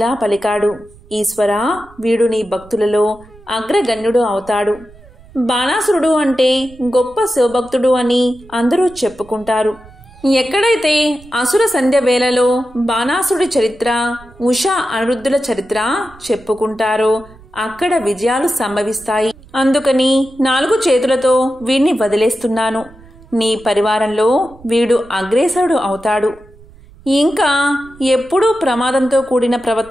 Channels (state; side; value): noise; right; rumble, 24 dB below the sound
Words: పలికాడు. ఈశ్వరా, వీడు నీ భక్తులలో అగ్రగణ్యుడు అవుతాడు. బాణాసురుడు అంటే గొప్ప శివభక్తుడు అని అందరూ చెప్పుకుంటారు. ఎక్కడైతే అసుర సంధ్య వేళలో బాణాసురుడి చరిత్ర, ఉషా అనిరుద్ధుల చరిత్ర చెప్పుకుంటారో అక్కడ విజయాలు సంభవిస్తాయి. అందుకని 4 చేతులతో వీణ్ణి వదిలేస్తున్నాను. నీ పరివారంలో వీడు అగ్రేసరుడు అవుతాడు. ఇంకా ఎప్పుడూ ప్రమాదంతో కూడిన